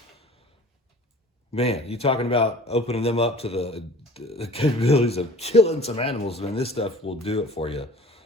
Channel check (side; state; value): both; normal; correlation 0.45